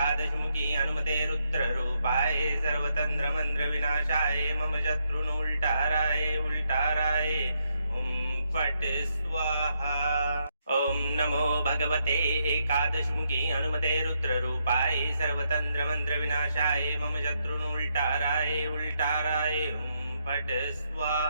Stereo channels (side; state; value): both; inverted; correlation -0.78